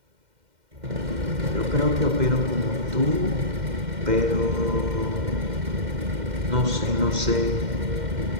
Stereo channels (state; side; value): late; left; 2.1 ms